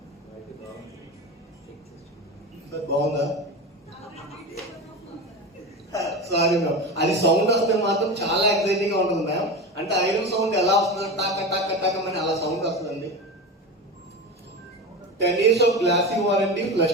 సార్ బాగుందా? సారీ మ్యామ్, అది సౌండ్ వస్తే మాత్రం చాలా ఎక్సైటింగ్ గా ఉంటుంది మ్యామ్. అంటే ఐరన్ సౌండ్ ఎలా వస్తుంది, టాక టాక టాక అని అలా సౌండ్ వస్తుందండి. 10 years of glassy warranty,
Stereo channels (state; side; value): normal; both; correlation 0.25